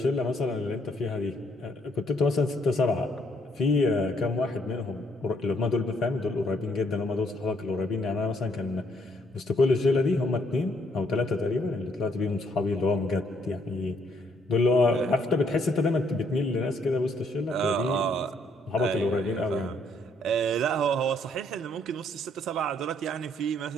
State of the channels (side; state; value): both; normal; correlation 0.69